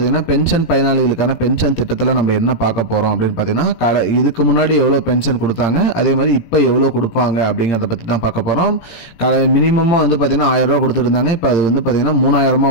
பென்ஷன் பயனாளிகளுக்கான பென்ஷன் திட்டத்தில் நம்ம என்ன பார்க்க போகிறோம் அப்படின்னு பார்த்தீங்கன்னா இதுக்கு முன்னாடி எவ்வளோ பென்ஷன் கொடுத்தாங்க, அதே மாதிரி இப்போ எவ்வளோ கொடுப்பாங்க அப்படிங்கிறத பற்றி தான் பார்க்க போகிறோம். மினிமமாக வந்து பார்த்தீங்கன்னா 1000 ரூபா கொடுத்துருந்தாங்க. இப்போ அது வந்து பார்த்தீங்கன்னா 3000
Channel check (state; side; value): late; right; 17 ms